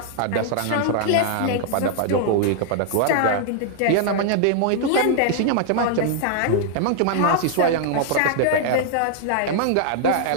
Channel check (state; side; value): different; both; correlation -0.01